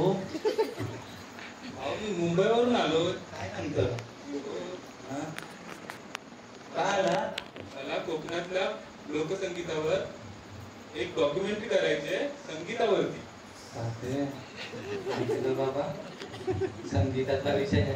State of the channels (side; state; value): both; identical; correlation 1.00